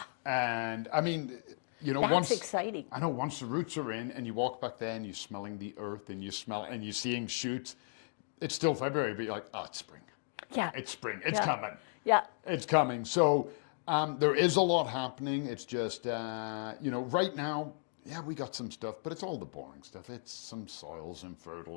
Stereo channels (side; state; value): right; silent; digital silence